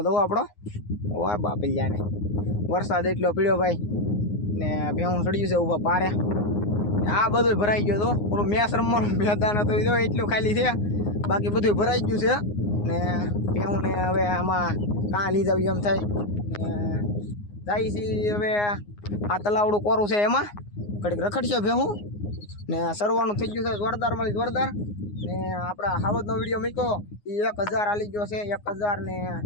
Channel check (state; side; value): late; right; 9.7 ms